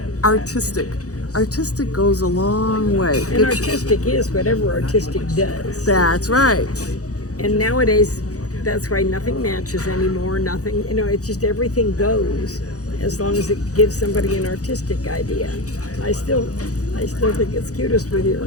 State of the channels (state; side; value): late; right; 0.66 ms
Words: artistic. Artistic goes a long way. And It's- artistic is whatever artistic does. That's right. And nowadays, that's why nothing matches anymore. Nothing, it's just everything goes as long as it gives somebody an artistic idea. I still think it's cutest with your